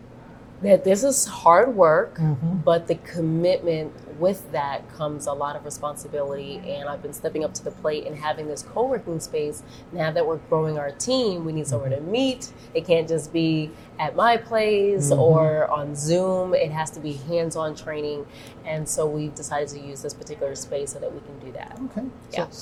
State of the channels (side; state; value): both; identical; correlation 1.00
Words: That this is hard work, but the commitment with that comes a lot of responsibility. And I've been stepping up to the plate and having this co-working space. Now that we're growing our team, we need somewhere to meet. It can't just be at my place or on Zoom. It has to be hands-on training. And so we've decided to use this particular space so that we can do that. Okay. Yeah.